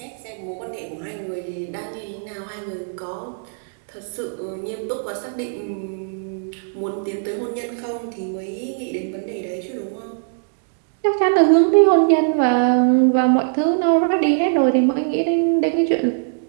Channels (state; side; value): silent; left; digital silence